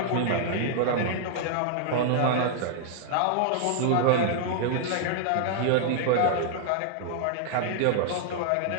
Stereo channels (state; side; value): different; both; correlation -0.01